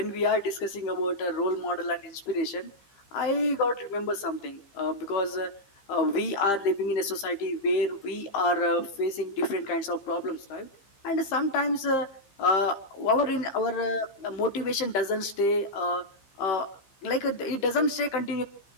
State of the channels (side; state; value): right; late; 15 ms